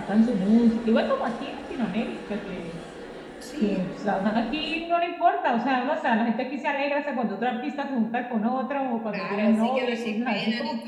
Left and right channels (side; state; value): both; identical; correlation 1.00